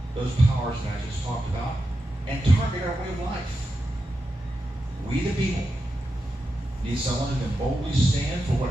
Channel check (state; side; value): normal; both; correlation 0.89